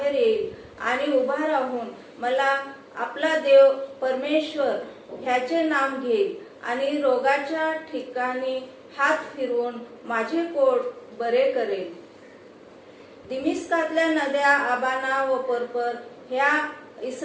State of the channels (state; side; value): identical; both; correlation 1.00